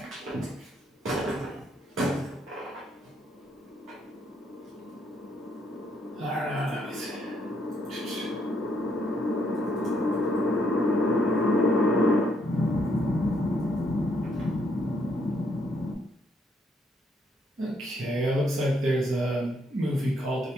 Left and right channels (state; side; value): normal; both; correlation 0.73